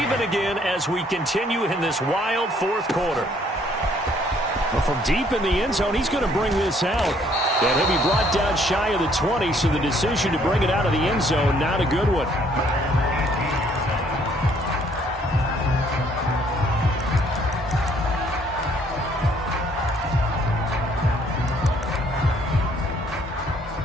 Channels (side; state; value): both; normal; correlation 0.64